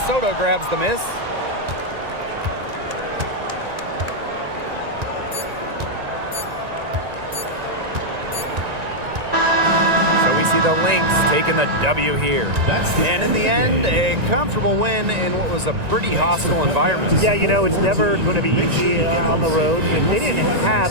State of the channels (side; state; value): left; late; 1.9 ms